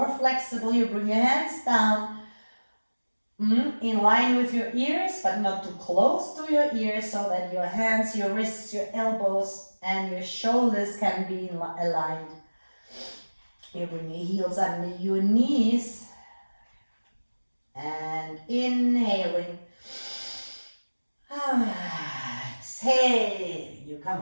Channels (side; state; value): both; inverted; correlation -1.00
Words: flexible, you bring your hands down in line with your ears, but not too close to your ears, so that your hands, your wrists, your elbows, and your shoulders can be aligned. You bring your heels under your knees, and inhaling. Exhale, you come